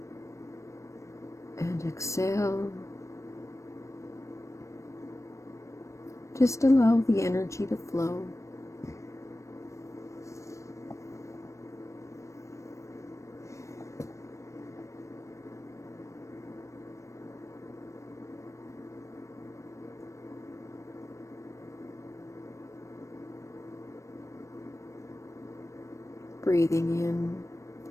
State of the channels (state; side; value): late; right; 0.15 ms